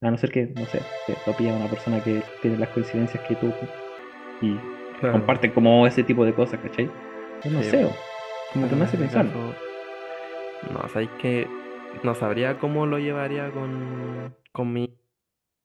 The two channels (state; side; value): identical; both; correlation 1.00